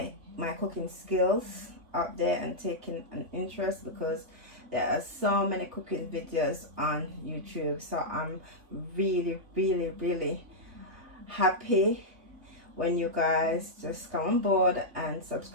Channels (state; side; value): late; left; 3.3 ms